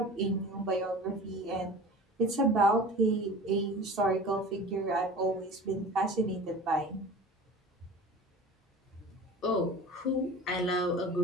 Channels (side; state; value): both; normal; correlation 0.38